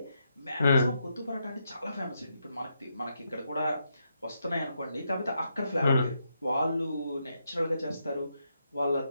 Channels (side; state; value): both; inverted; correlation -0.81